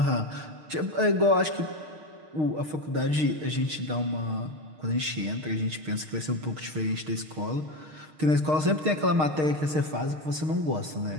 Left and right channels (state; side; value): late; left; 6.5 ms